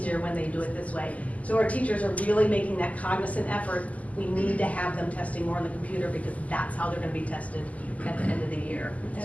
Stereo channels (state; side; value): late; right; 0.073 ms